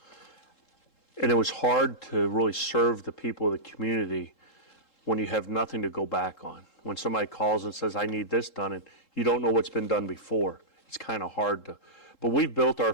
And it was hard to really serve the people of the community when you have nothing to go back on. When somebody calls and says, I need this done, and you don't know what's been done before, it's kind of hard to. But we've built our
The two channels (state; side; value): late; right; 3.7 ms